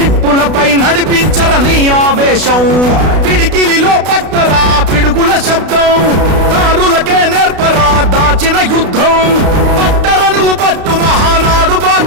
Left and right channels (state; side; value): late; left; 32 ms